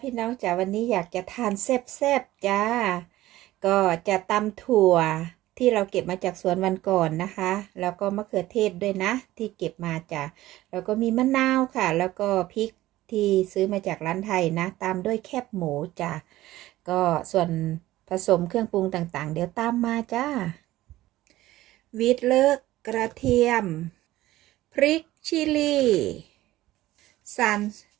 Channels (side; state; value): left; quieter; 16.1 dB